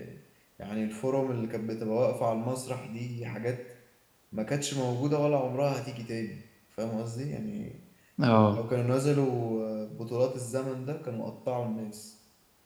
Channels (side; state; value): both; identical; correlation 1.00